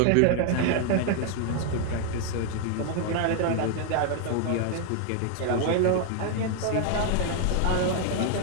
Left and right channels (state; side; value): different; both; correlation 0.00